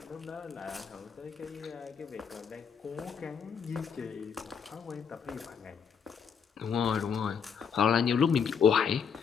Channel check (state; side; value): quieter; right; 6.7 dB